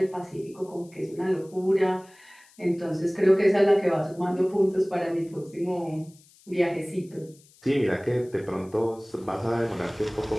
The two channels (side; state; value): left; noise; hiss, 28 dB below the sound